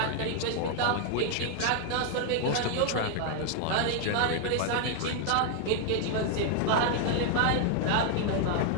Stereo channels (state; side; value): different; both; correlation 0.00